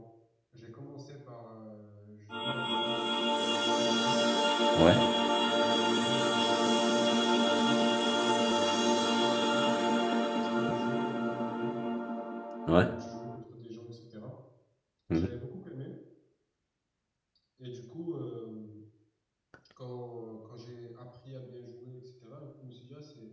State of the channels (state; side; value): identical; both; correlation 1.00